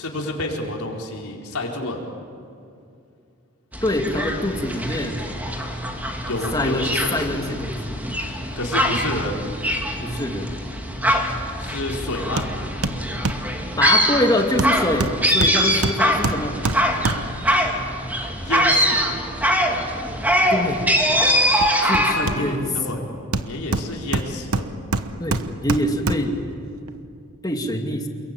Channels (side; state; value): both; normal; correlation 0.36